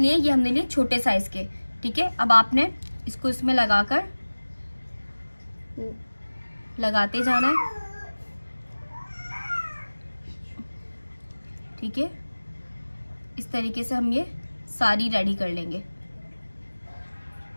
ये हमने लिए छोटे साइज के। ठीक है, अब आपने इसको इसमें लगाकर लगाते जाना है। ठीक है, इस तरीके से हम ये सारी रेडी कर लेंगे।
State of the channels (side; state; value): both; inverted; correlation -1.00